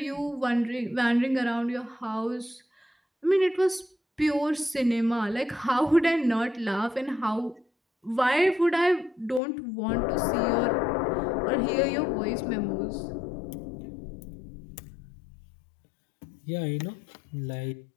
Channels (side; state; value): right; drops out; at 9.4 s